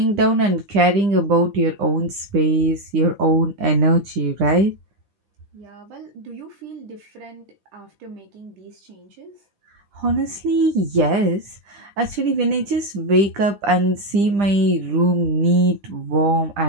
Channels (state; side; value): late; left; 9.9 ms